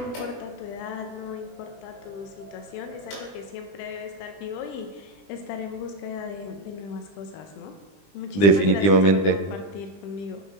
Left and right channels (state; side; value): late; right; 20 ms